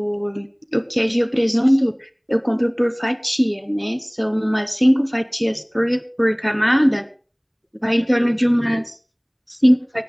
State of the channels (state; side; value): identical; both; correlation 1.00